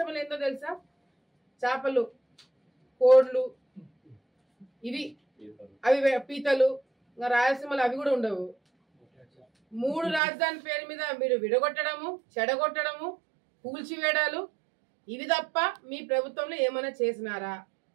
ఏందో తెలుసా? చేపలు, కోడ్లు, ఇవి అవి పీతలు, ఇంకా రాయలసీమలు అవి కూడా ఉండవు. 3 రాజధాని పేరు మీద మీరు విడగొట్టడము, చెడగొట్టడము, కూల్చివేయడాలు ఇవి తప్ప మీ ప్రభుత్వంలో ఏమైనా చేసినారా?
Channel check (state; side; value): drops out; left; at 10.2 s